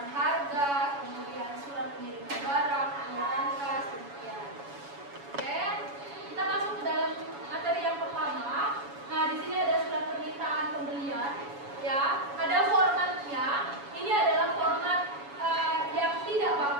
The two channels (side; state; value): left; late; 7.1 ms